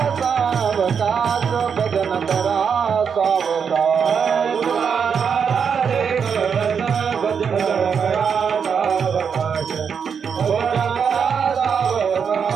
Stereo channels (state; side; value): quieter; left; 6.7 dB